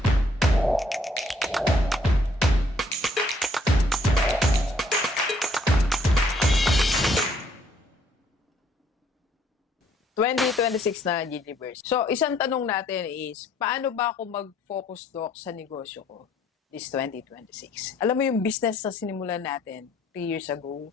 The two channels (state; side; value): normal; both; correlation 0.64